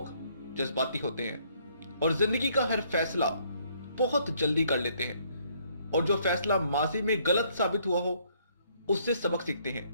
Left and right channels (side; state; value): both; inverted; correlation -0.66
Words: जज्बाती होते हैं और जिंदगी का हर फैसला बहुत जल्दी कर लेते हैं, और जो फैसला माजी में गलत साबित हुआ हो उससे सबक सीखते हैं,